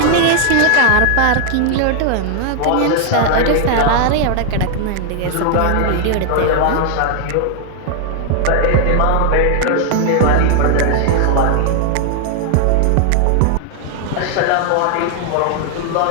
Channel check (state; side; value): different; both; correlation 0.00